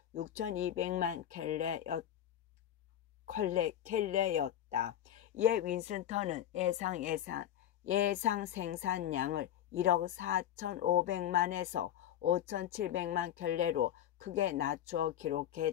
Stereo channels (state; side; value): quieter; right; 11.0 dB